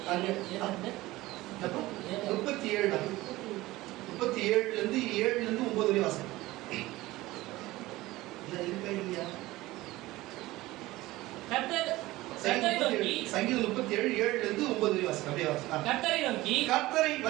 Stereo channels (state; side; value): quieter; left; 18.4 dB